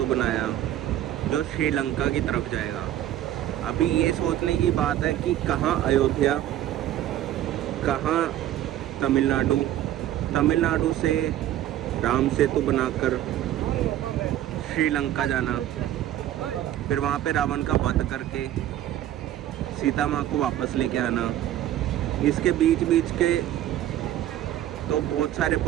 बनाया जो श्रीलंका की तरफ जाएगा। अभी ये सोचने की बात है कि कहाँ अयोध्या, कहाँ तमिलनाडु। तमिलनाडु से राम सेतु बनाकर श्रीलंका जाना, फिर वहाँ पे रावण का वध करके सीता माँ को वापस लेके आना। इसके बीच बीच के तो बहुत सारे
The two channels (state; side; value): quieter; left; 12.7 dB